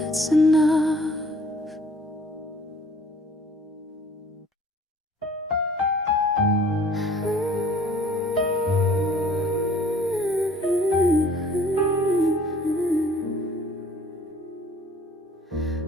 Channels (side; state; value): both; normal; correlation 0.54